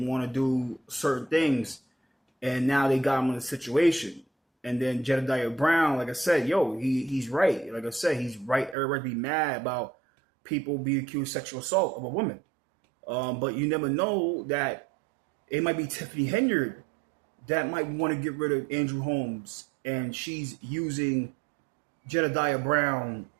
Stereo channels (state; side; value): drops out; left; at 8.8 s